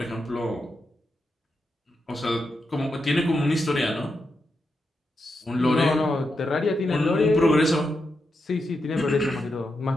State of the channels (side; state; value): both; normal; correlation 0.86